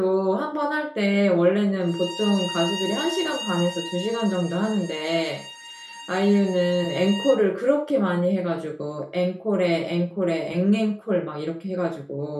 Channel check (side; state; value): both; identical; correlation 1.00